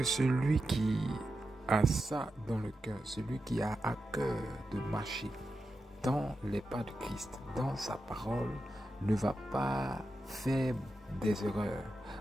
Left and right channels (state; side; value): normal; both; correlation 0.89